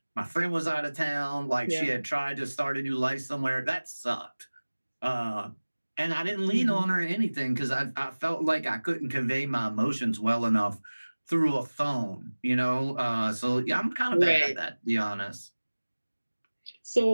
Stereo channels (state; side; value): inverted; both; correlation -1.00